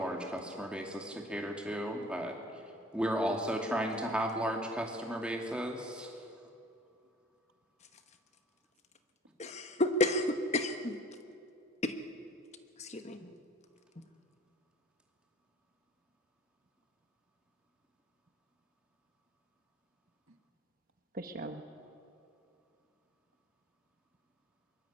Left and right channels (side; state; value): both; normal; correlation 0.49